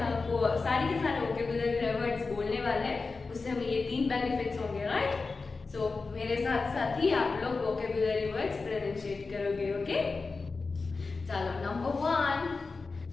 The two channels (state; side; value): quieter; right; 4.1 dB